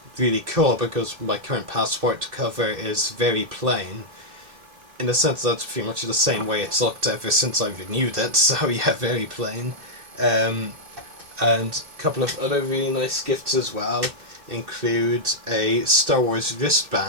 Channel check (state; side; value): late; left; 2.6 ms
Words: really cool, because my current passport cover is very plain. In a sense, that's pretty much the same way it's looked ever since I renewed it, so yeah, very plain. And a couple of other really nice gifts as well include a Star Wars